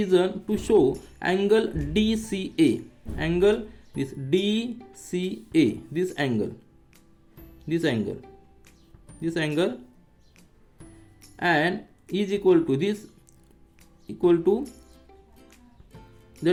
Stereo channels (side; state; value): both; identical; correlation 1.00